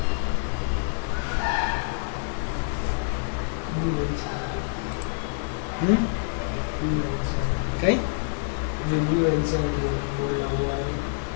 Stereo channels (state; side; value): silent; right; digital silence